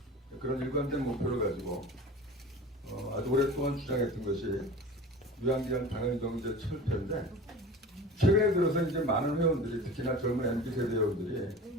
그런 일관된 목표를 가지고 아주 오랫동안 주장했던 것이 유한기간 당연경제 철폐인데 최근에 들어서 이제 많은 회원들이 특히나 젊은 MZ 세대 회원들이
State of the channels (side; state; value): both; normal; correlation 0.37